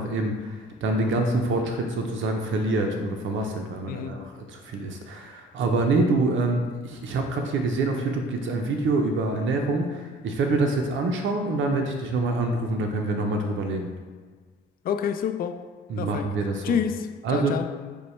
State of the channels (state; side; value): normal; both; correlation 0.49